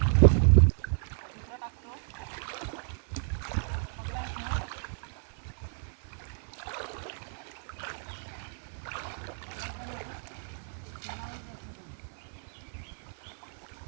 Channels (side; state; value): left; silent; digital silence